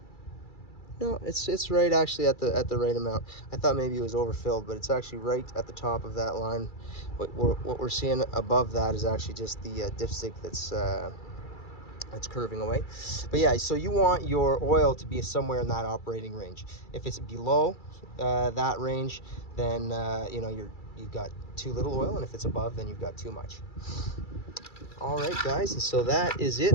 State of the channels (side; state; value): right; late; 2.3 ms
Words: no, it's right actually at the right amount. I thought maybe it was overfilled, but it's actually right at the top of that line. What we're seeing above that is actually just the dipstick that's curving away. But yeah, so you want your oil to be somewhere in that operating range. If it's below that range, then you know, you've got too little oil, and if it's above, then you've got too much. All right, guys, and so that is